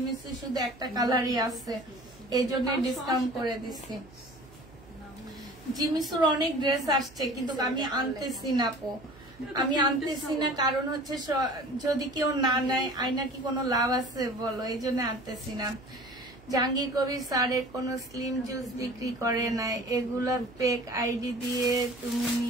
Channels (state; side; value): noise; right; hum, 24 dB below the sound